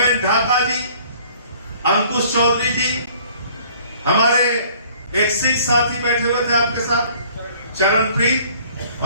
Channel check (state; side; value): inverted; both; correlation -0.55